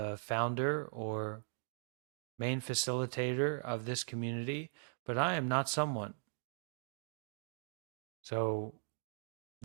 founder or main facilitator of this community, but I am not someone. So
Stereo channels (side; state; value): left; silent; digital silence